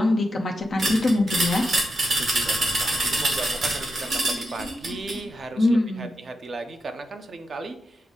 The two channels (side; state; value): both; normal; correlation 0.86